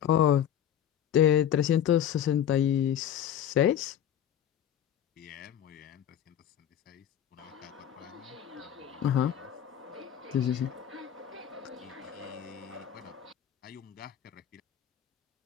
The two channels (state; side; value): quieter; right; 10.0 dB